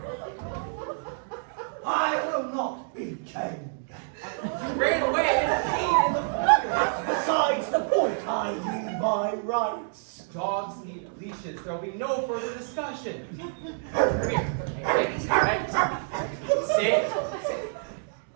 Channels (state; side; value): silent; left; digital silence